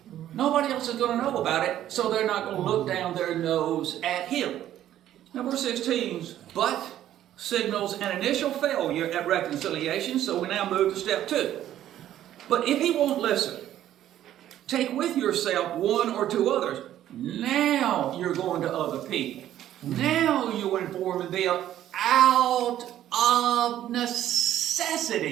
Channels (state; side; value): quieter; left; 12.1 dB